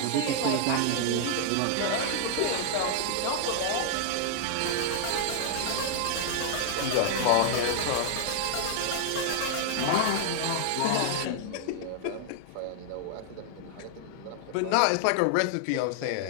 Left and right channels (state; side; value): different; both; correlation 0.00